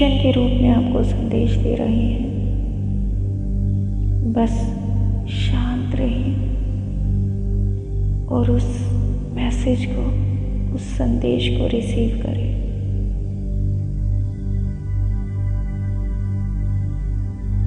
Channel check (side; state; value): both; identical; correlation 1.00